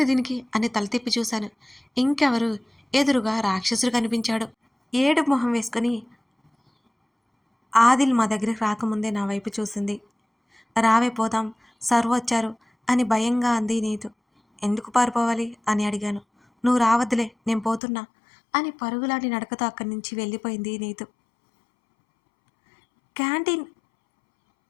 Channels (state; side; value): drops out; right; at 17.8 s